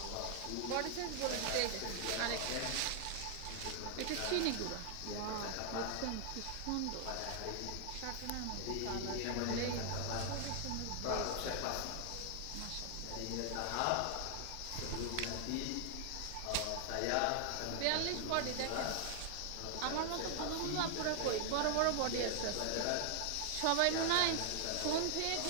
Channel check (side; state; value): both; different; correlation 0.00